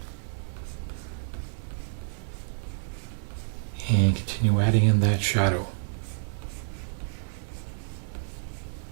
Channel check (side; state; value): left; silent; digital silence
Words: And continue adding in that shadow.